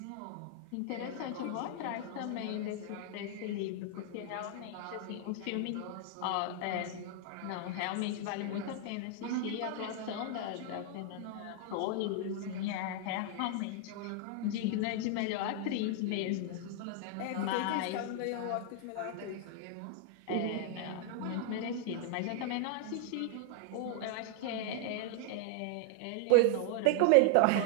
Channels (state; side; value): different; both; correlation 0.00